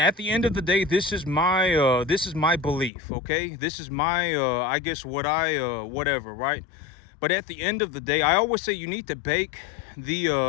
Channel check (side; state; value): right; drops out; at 2.9 s